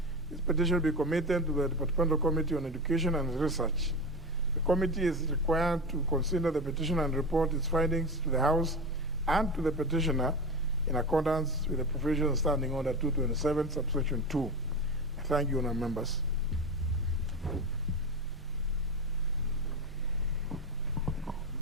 this petition be committed to the Departmental Committee on Education and Research. The committee is required to consider the petition and report its findings to the House and to the petitioner in accordance with the provisions of Standing Order 227, subsection 2. Thank you, honourable members.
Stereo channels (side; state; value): both; normal; correlation 0.23